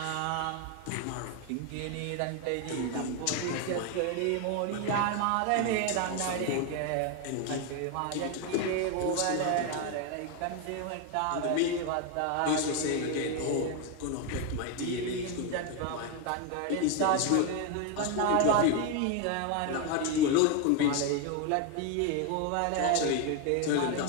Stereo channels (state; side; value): different; both; correlation 0.01